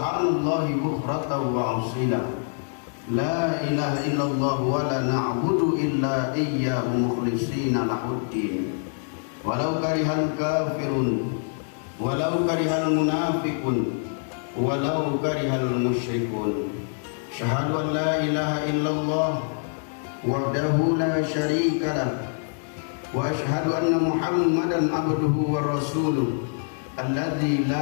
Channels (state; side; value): silent; right; 62 dB below the other